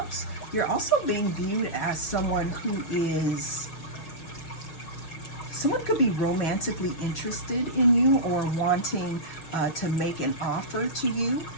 you're also being viewed as someone who is someone could be romantically interested in you or wanting to make an offer to you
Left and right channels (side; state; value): right; late; 6.2 ms